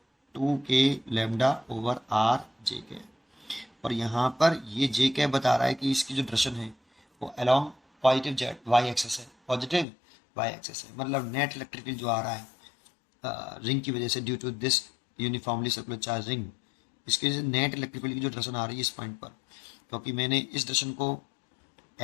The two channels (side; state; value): right; drops out; at 9.9 s